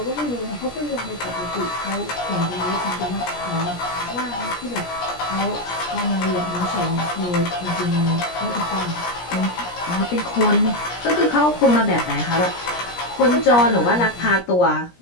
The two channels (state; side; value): late; right; 17 ms